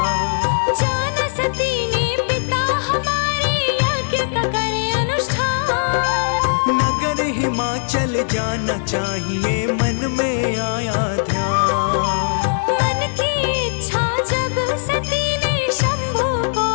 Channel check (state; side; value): silent; right; digital silence